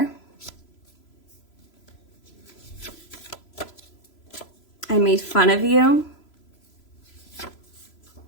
I made fun of you.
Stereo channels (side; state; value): right; late; 3.0 ms